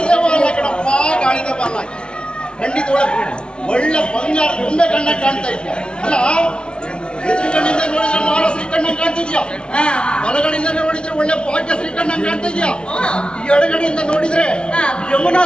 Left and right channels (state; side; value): late; right; 0.052 ms